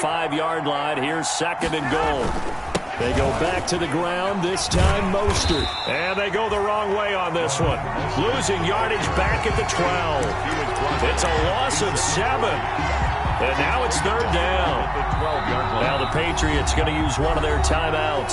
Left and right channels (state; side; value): identical; both; correlation 1.00